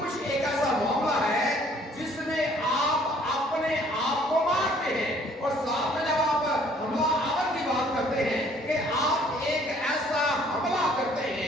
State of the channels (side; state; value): both; normal; correlation 0.59